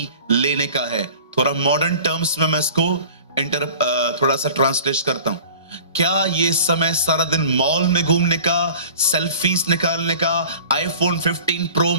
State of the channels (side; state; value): both; inverted; correlation -0.43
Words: लेने का है? थोड़ा मॉडर्न टर्म्स में मैं इसको थोड़ा सा ट्रांसलेट करता हूं। क्या ये समय सारा दिन मॉल में घूमने का, सेल्फीज निकालने का, आईफोन 15 प्रो